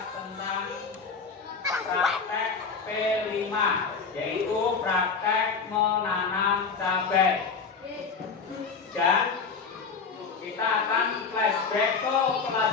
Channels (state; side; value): quieter; right; 5.2 dB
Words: tentang praktek P5, yaitu praktek menanam cabai. Dan kita akan flashback ke